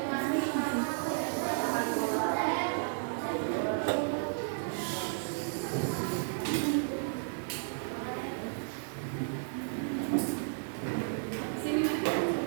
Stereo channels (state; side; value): silent; left; digital silence